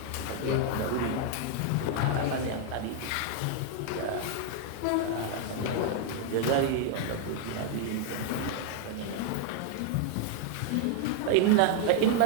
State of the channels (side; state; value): both; different; correlation 0.00